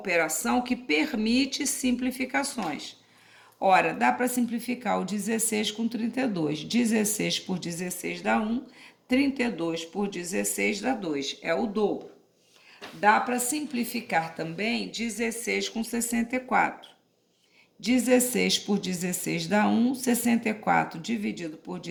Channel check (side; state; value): both; identical; correlation 1.00